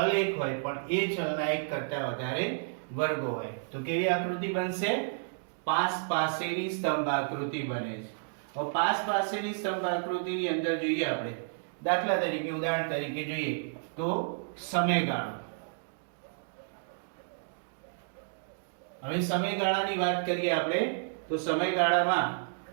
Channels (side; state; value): left; silent; digital silence